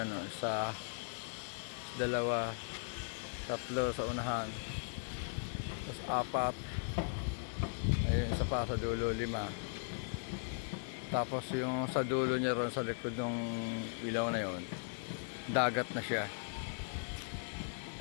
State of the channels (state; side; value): silent; right; digital silence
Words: no. Isa, dalawa, tatlo sa unahan. Tapos apat. Ayun, isa pa sa dulo, 5. Tapos yung sa dulo niya ron, sa likod ng ilaw na yon, dagat na siya.